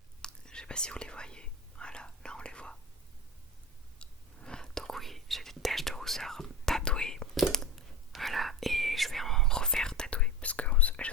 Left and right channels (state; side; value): normal; both; correlation 0.28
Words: je sais pas si vous les voyez. Voilà, là on les voit. Donc, oui, j'ai des taches de rousseur tatouées. Voilà, et je vais en refaire tatouer parce que je